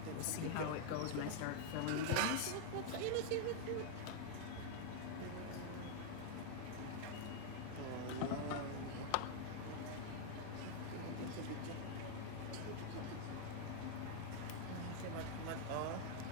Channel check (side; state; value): both; different; correlation 0.00